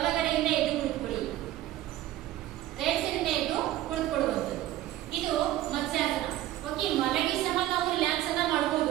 ಎದ್ದು ಕುಳಿತುಕೊಳ್ಳಿ. ರೈಟ್ ಸೈಡ್ ಎದ್ದು ಕುಳಿತುಕೊಳ್ಳುವಂಥದ್ದು. ಇದು ಮತ್ಸ್ಯಾಸನ. ಓಕೆ, ಮಲಗಿ ಸಹ ನಾವು ರಿಲ್ಯಾಕ್ಸ್ ಅನ್ನ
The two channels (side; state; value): left; quieter; 14.2 dB